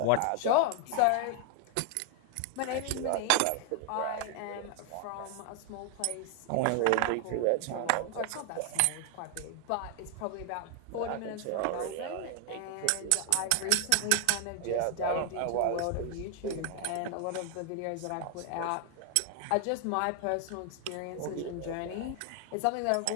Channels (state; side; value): different; both; correlation 0.00